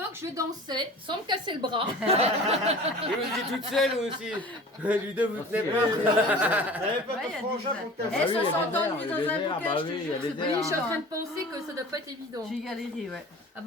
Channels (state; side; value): normal; both; correlation 0.41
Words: je dansais sans me casser le bras. Et vous étiez toute seule aussi. Ludo, vous tenez pas. T'avais pas Ouais, il y de a frangin des- pour te Eh, casser. ça s'entend lui dans un bouquet, bah je te oui, il y jure, a c'est des pas Oui, je suis en évident. train de penser que ça doit pas être évident. J'ai galéré, ouais. Ah